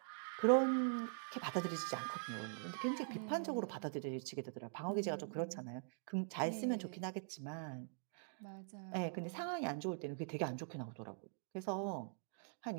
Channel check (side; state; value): left; silent; digital silence